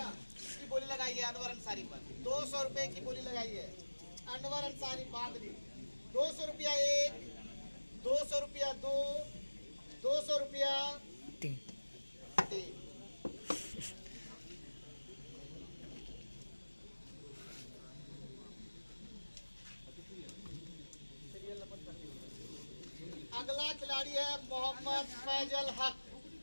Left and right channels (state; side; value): inverted; both; correlation -1.00